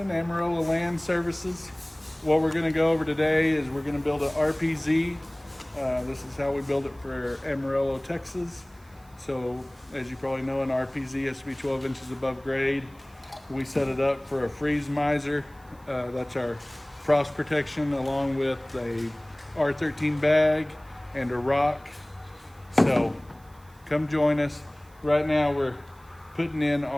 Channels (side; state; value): right; noise; hiss, 30 dB below the sound